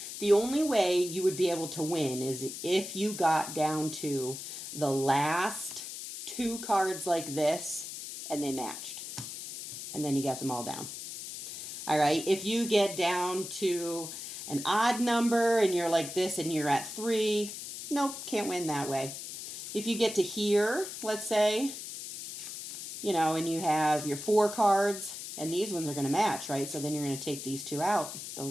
The only way you would be able to win is if you got down to the last 2 cards like this and they matched. And then you got them all down. All right, if you get down to an odd number and you're like this and you're at 3, nope, can't win that way. If you get to here, let's say, and you have your 4 cards, and these ones are going to match, right? So then you're going to take these 2 out.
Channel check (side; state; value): left; noise; hiss, 9 dB below the sound